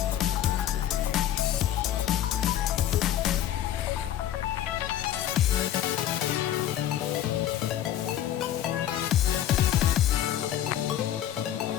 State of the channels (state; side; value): quieter; right; 11.5 dB